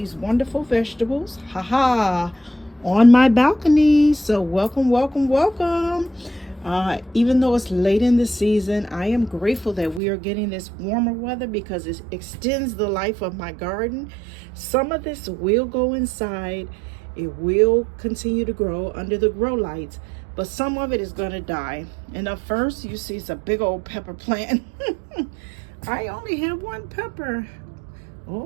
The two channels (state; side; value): drops out; left; at 10.0 s